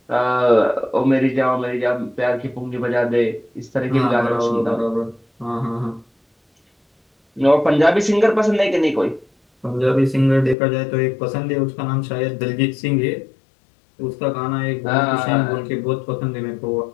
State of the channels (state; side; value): drops out; right; at 10.6 s